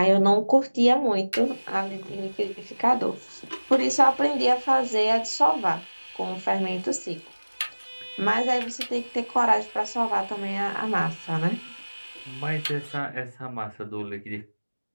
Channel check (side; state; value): both; inverted; correlation -1.00